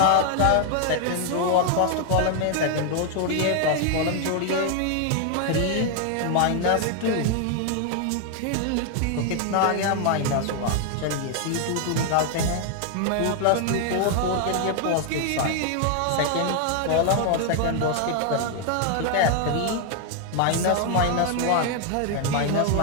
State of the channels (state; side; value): different; both; correlation 0.00